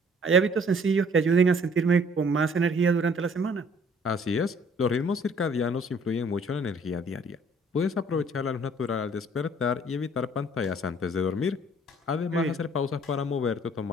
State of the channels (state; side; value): normal; both; correlation 0.57